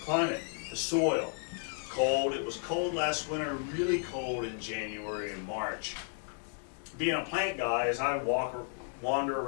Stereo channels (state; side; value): silent; right; 56 dB below the other